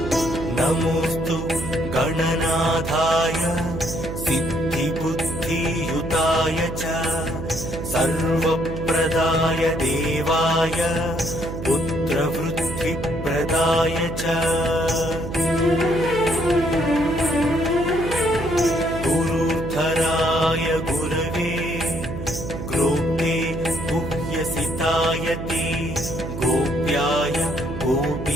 नमोऽस्तु गणनाथाय सिद्धिबुद्धियुताय च सर्वप्रदाय देवाय पुत्रवृद्धिप्रदाय च गुरुधराय गुरवे ग्रोप्ते गुह्यसिताय ते गोप्याय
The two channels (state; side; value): noise; right; hum, 7 dB below the sound